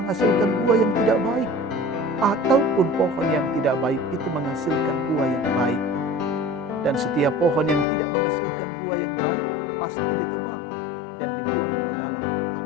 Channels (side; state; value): right; drops out; at 7.9 s